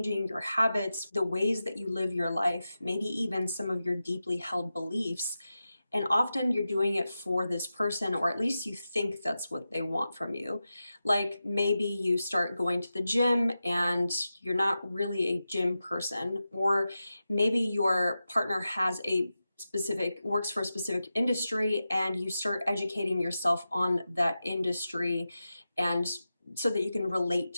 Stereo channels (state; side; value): inverted; both; correlation -0.92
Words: your habits, the ways that you live your life, maybe even some of your deeply held beliefs, and often you're doing it for this person, or at least you think that's what they want from you. Like maybe you start going to the gym and you're not really a gym person, or maybe your partner has a works for a specific industry and you start educating yourself on that industry and so that you can relate